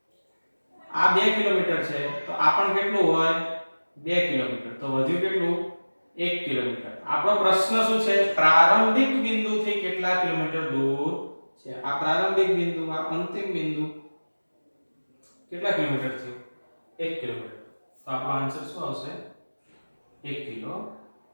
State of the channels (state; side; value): inverted; both; correlation -1.00